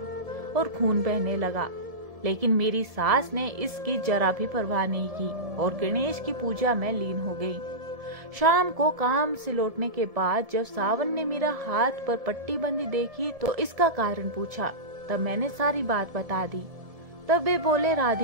और खून बहने लगा। लेकिन मेरी सास ने इसकी जरा भी परवाह नहीं की और गणेश की पूजा में लीन हो गई। शाम को काम से लौटने के बाद जब सावन ने मेरा हाथ पर पट्टी बंदी देखी तो इसका कारण पूछा। तब मैंने सारी बात बता दी। तब वे बोले,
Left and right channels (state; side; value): late; left; 1.7 ms